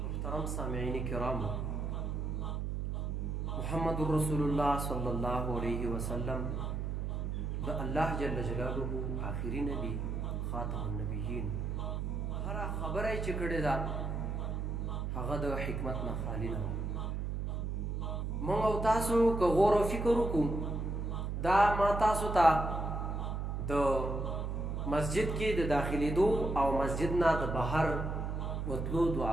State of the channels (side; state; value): right; noise; hum, 2 dB below the sound